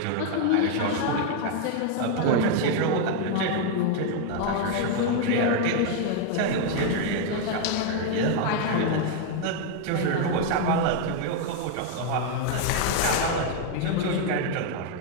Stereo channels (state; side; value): different; both; correlation 0.01